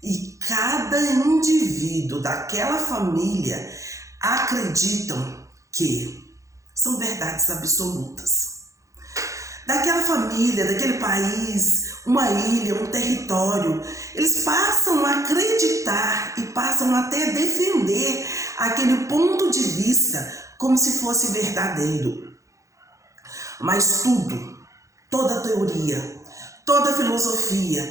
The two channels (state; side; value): late; left; 0.15 ms